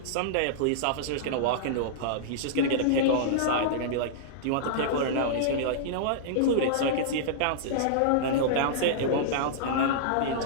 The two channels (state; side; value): different; both; correlation -0.02